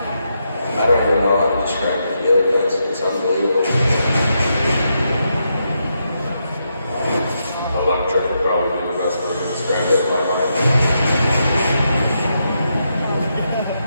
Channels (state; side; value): inverted; both; correlation -0.82